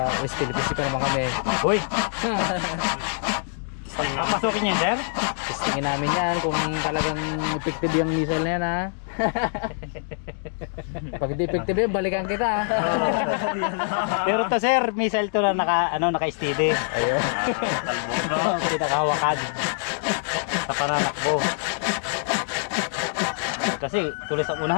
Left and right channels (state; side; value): silent; right; digital silence